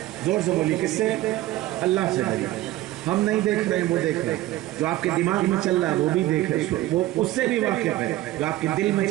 زور سے بولی، کس سے؟ اللہ سے ڈریے۔ ہم نہیں دیکھ رہے ہیں، وہ دیکھ رہے ہیں۔ جو آپ کے دماغ میں چل رہا ہے وہ بھی دیکھ رہے ہیں، وہ اس سے بھی واقف ہے۔ جو آپ کے دل میں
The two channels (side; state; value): left; quieter; 16.0 dB